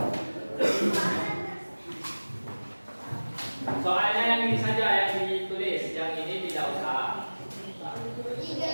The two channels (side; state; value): both; inverted; correlation -1.00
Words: Soalnya yang ini saja yang ditulis, yang ini tidak usah.